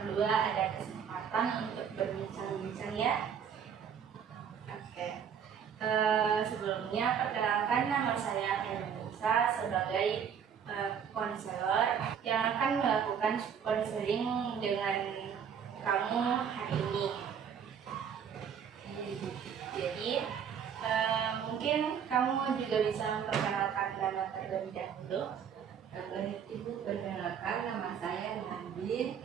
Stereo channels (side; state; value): left; quieter; 7.7 dB